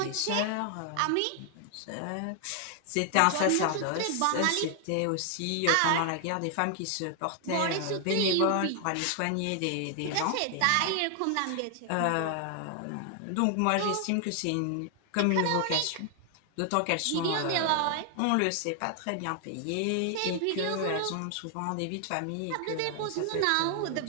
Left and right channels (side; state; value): both; different; correlation 0.00